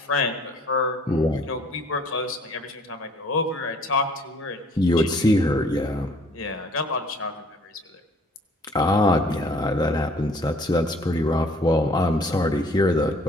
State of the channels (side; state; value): both; normal; correlation 0.57